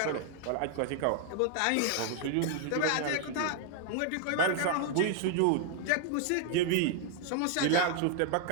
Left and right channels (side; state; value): both; different; correlation 0.00